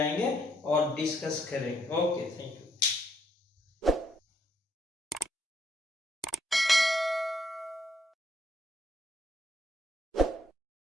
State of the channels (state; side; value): normal; both; correlation 0.72